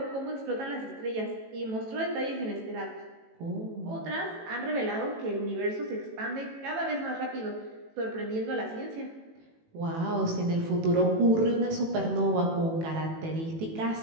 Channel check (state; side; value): late; left; 18 ms